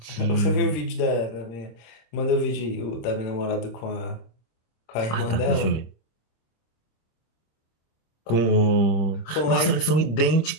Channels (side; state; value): right; late; 26 ms